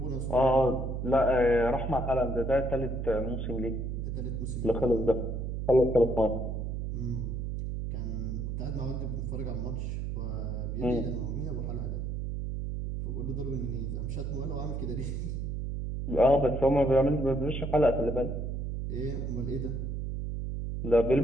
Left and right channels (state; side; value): noise; right; hum, 3 dB below the sound